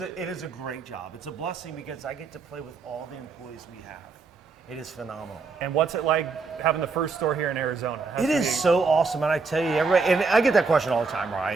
is a great job. It's a blessing because I get to play with all the employees we have. It is phenomenal. And what's it like having the first store here in Arizona? It is so awesome, and I tell you, everybody, and I get that question all the time,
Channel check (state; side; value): quieter; left; 4.4 dB